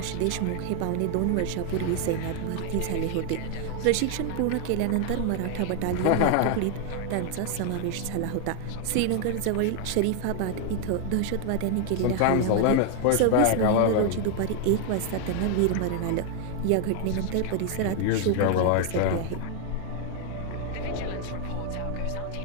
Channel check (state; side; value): different; both; correlation 0.00